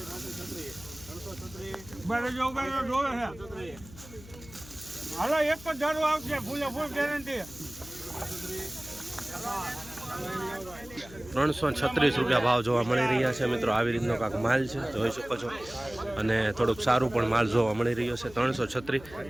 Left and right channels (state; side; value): noise; left; hum, 18 dB below the sound